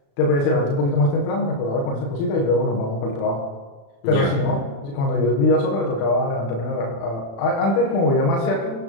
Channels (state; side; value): late; right; 36 ms